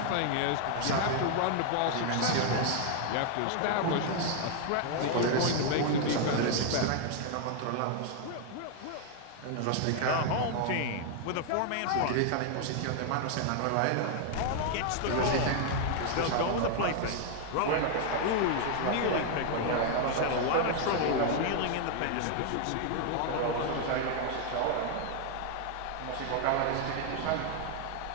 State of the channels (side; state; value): both; different; correlation 0.00